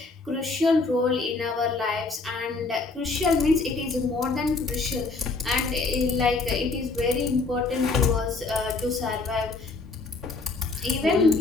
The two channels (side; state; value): right; quieter; 3.8 dB